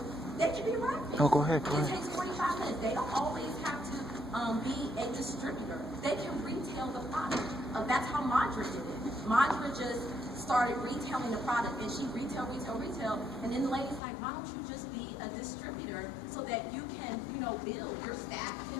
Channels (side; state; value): right; drops out; at 14.0 s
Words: they can be wrapping. Oh, go ahead. It takes 45 minutes. They don't always have to be a distributor. They can retail the product. That's how Madra did it. Madra just started retailing the product, and she retail, and then the lady's like, why don't you just be a distributor so that you can, you know, build, your staff